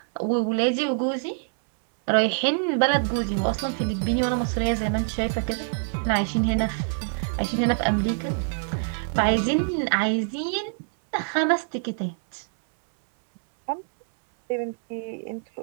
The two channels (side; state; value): left; silent; 62 dB below the other